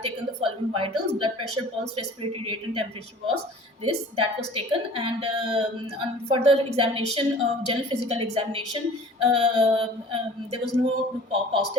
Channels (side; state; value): both; normal; correlation 0.46